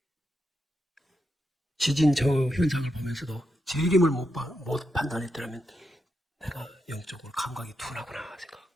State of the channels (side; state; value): both; normal; correlation 0.85